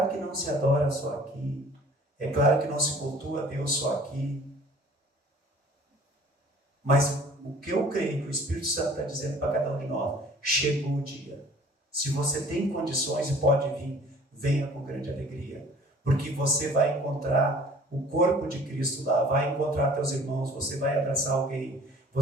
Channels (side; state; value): both; normal; correlation 0.50